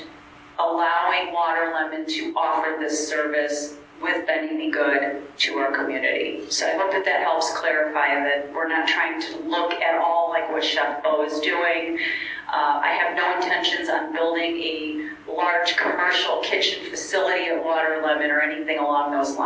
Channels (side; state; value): both; identical; correlation 1.00